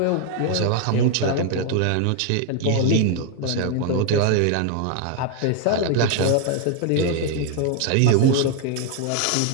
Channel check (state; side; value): different; both; correlation 0.01